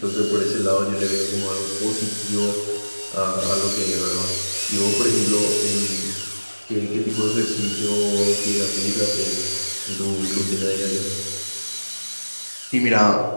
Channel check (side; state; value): both; inverted; correlation -1.00